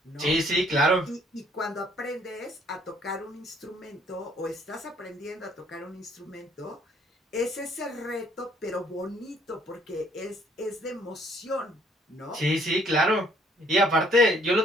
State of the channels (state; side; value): normal; both; correlation 0.63